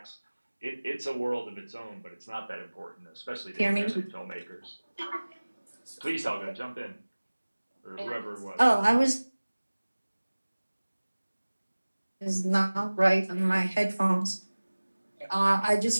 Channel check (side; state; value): both; inverted; correlation -1.00